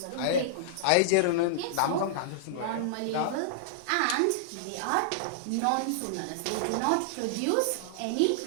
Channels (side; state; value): both; different; correlation -0.01